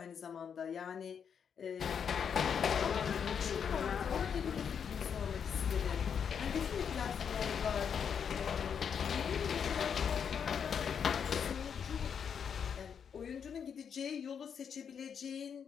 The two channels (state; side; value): quieter; right; 7.3 dB